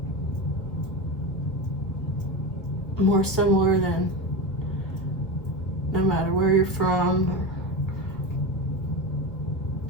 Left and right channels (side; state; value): right; late; 1.7 ms